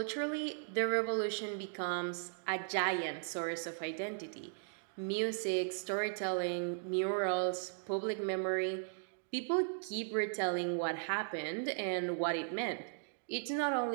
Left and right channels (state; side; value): silent; left; digital silence